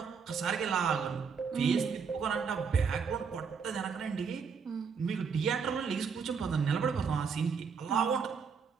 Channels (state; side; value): quieter; left; 6.0 dB